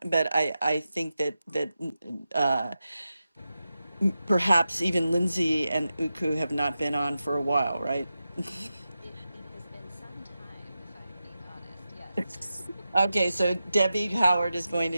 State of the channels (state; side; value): inverted; both; correlation -0.91